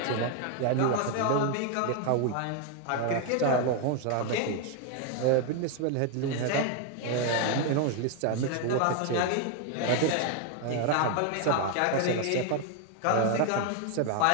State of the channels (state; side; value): different; both; correlation 0.01